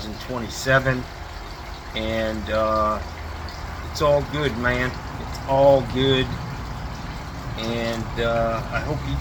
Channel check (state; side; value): identical; both; correlation 1.00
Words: And it's all good, man. It's all good. And I hope you